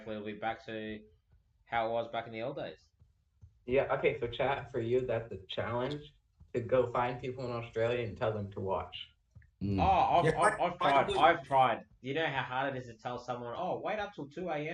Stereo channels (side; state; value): both; identical; correlation 1.00